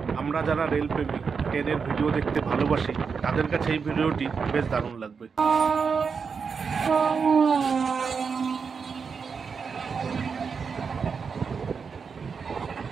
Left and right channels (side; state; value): left; quieter; 5.7 dB